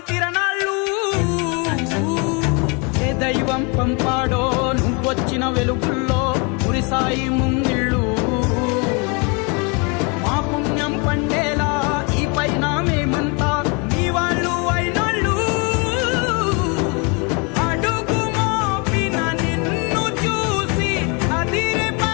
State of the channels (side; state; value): right; quieter; 32.0 dB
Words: తిరణాళ్ళు. ఏ దైవం పంపాడో నువ్వొచ్చిన వెలుగుల్లో కురిసాయి ముంగిళ్ళు.